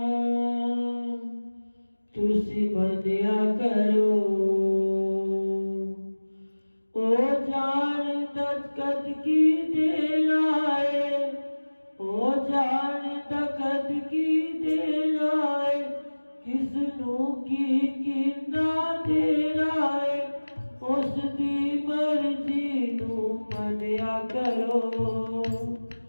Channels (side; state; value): both; inverted; correlation -1.00